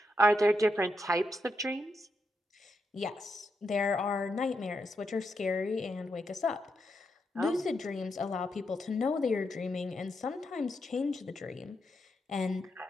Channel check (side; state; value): both; normal; correlation 0.83